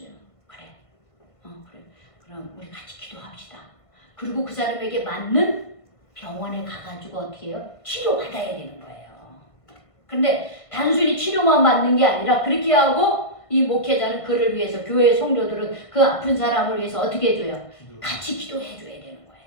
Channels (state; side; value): late; right; 1.5 ms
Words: 그래. 그래. 그럼 우리 같이 기도합시다. 그리고 그 사람에게 맞는 병원에 가가지고 어떻게 해요? 치료받아야 되는 거예요. 근데 단순히 치료만 받는 게 아니라 그렇게 하고 이 목회자는 그를 위해서 교회 성도들은 그 아픈 사람을 위해서 어떻게 해줘요? 같이 기도해 줘야 되는